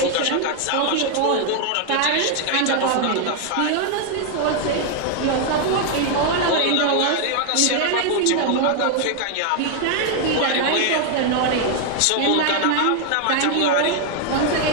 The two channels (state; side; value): different; both; correlation 0.00